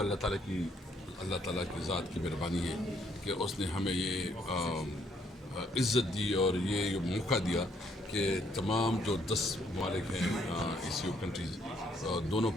اللہ تعالیٰ کی ذات کی مہربانی ہے کہ اس نے ہمیں یہ عزت دی اور یہ موقع دیا کہ تمام جو 10 ممالک ہیں ایسیو کنٹریز, دونوں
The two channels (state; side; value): normal; both; correlation 0.69